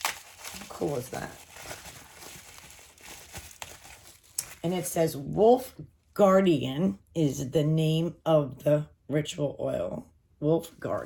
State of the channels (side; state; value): both; identical; correlation 1.00